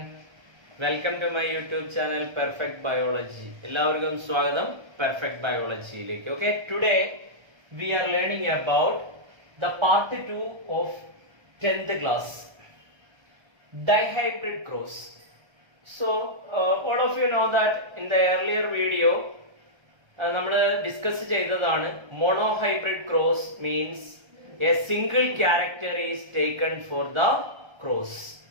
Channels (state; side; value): late; left; 1.3 ms